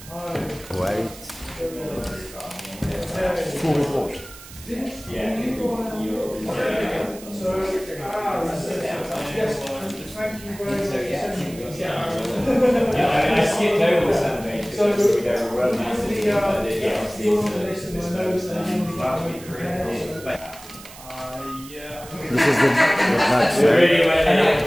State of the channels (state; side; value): noise; right; hiss, 17 dB below the sound